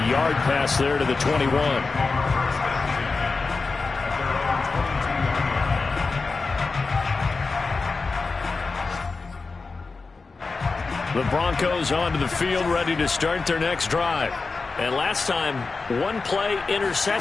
yard pass there to the 21. The The Broncos onto the field, ready to start their next drive. And last time, one-play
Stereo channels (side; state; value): right; quieter; 4.1 dB